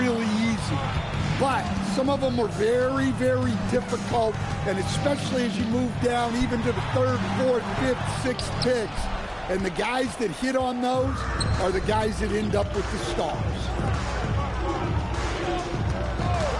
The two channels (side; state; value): both; identical; correlation 1.00